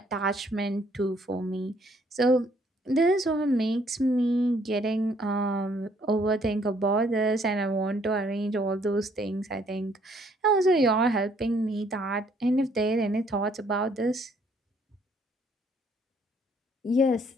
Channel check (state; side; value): normal; both; correlation 0.65